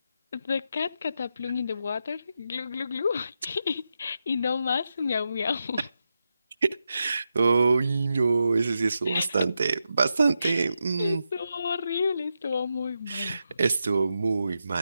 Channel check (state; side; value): inverted; both; correlation -0.87